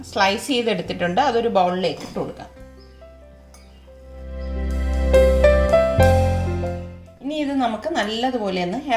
സ്ലൈസ് ചെയ്തെടുത്തിട്ടുണ്ട്. അതൊരു ബൗളിലേക്ക് ഇട്ട് കൊടുക്കാം. ഇനി ഇത് നമുക്ക് നല്ലതുപോലെ ഒന്ന്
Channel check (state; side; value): identical; both; correlation 1.00